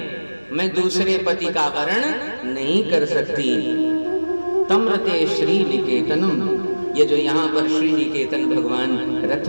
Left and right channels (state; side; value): inverted; both; correlation -1.00